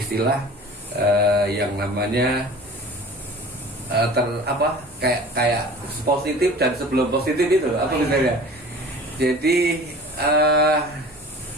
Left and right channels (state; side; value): normal; both; correlation 0.42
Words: yang namanya kayak positif dan sebelum positif itu apa misalnya. Jadi